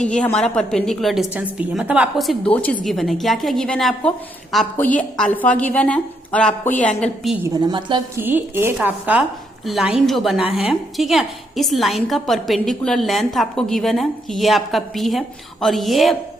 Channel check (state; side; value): normal; both; correlation 0.76